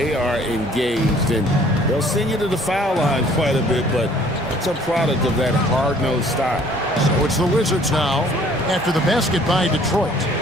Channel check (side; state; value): both; normal; correlation 0.57